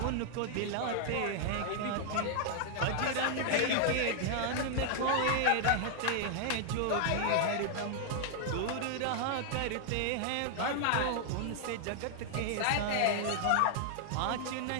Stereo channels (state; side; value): different; both; correlation 0.00